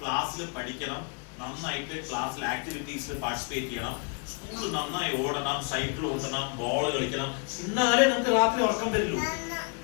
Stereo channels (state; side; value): quieter; right; 36.3 dB